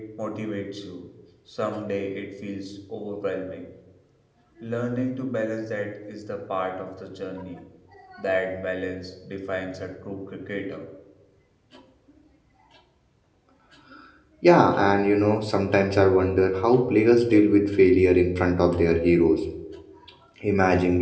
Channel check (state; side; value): identical; both; correlation 1.00